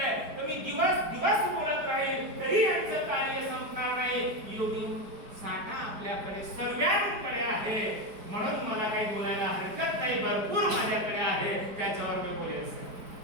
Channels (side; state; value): left; late; 4.9 ms